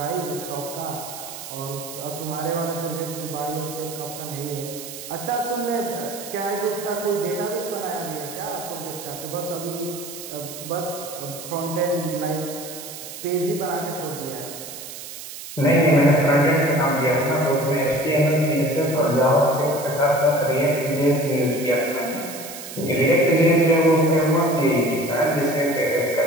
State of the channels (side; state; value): right; noise; hiss, 11 dB below the sound